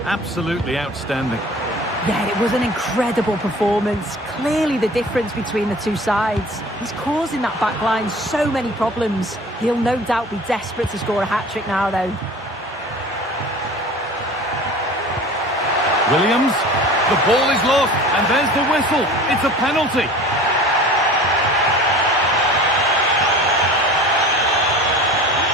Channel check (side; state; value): both; normal; correlation 0.42